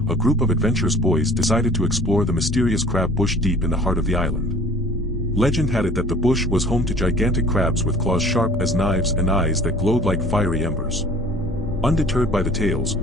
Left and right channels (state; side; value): noise; left; hum, 26 dB below the sound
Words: a group of adventurous boys decided to explore the mysterious crab bush deep in the heart of the island. Legend had it that the bush was home to gigantic crabs with claws sharp as knives and eyes that glowed like fiery embers. Undeterred by the tales,